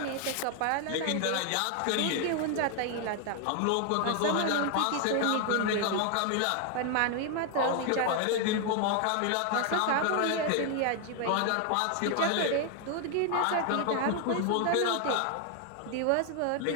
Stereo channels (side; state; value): both; different; correlation 0.00